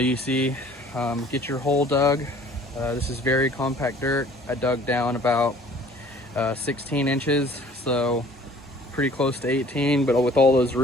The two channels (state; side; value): normal; both; correlation 0.52